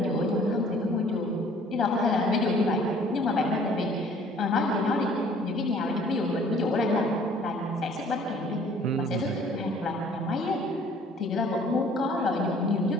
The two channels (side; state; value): both; normal; correlation 0.55